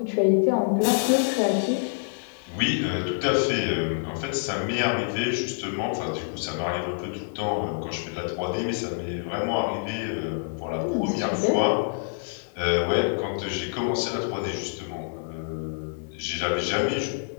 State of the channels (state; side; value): silent; right; digital silence